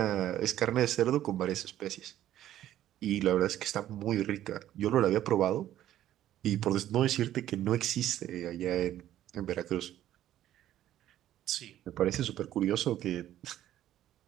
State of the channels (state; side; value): quieter; left; 12.5 dB